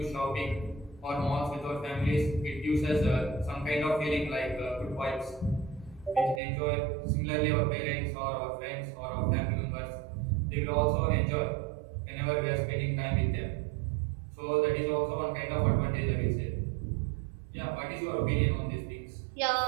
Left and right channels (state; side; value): drops out; left; at 6.4 s